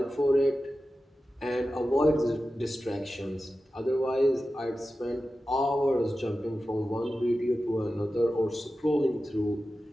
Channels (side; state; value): both; normal; correlation 0.93